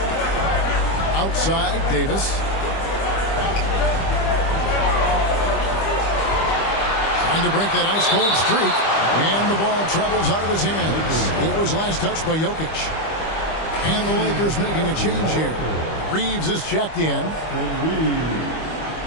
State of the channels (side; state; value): right; late; 25 ms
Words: Outside, Davis. Trying to break that ice-cold streak. And the ball travels out of his hands. It was last touched by Jokic. And the Lakers making a change here. Reeves is checked in.